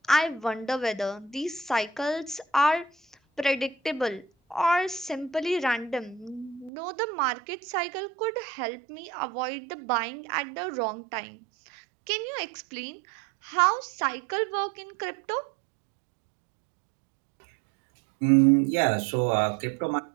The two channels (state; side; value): drops out; left; at 6.7 s